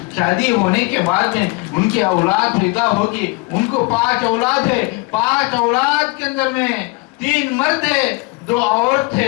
شادی ہونے کے بعد میں ان کی اولاد پیدا ہوگی، ان کو 5 اولاد ہے، 5 اولاد کے اندر میں 3 مرد ہے 2 عورت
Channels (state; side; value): quieter; right; 26.6 dB